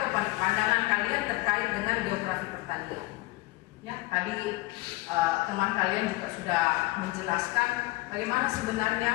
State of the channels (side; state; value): right; quieter; 20.7 dB